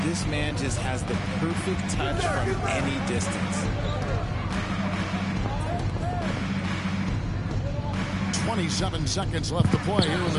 This man just has the perfect touch from any distance. 27 seconds left to play here in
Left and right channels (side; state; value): both; identical; correlation 1.00